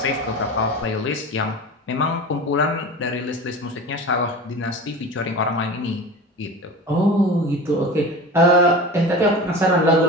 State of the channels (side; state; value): both; normal; correlation 0.33